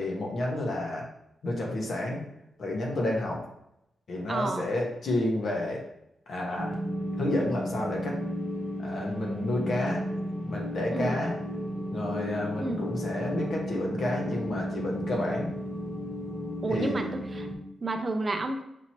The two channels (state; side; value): normal; both; correlation 0.84